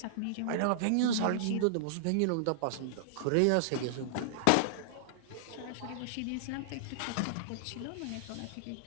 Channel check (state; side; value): different; both; correlation -0.01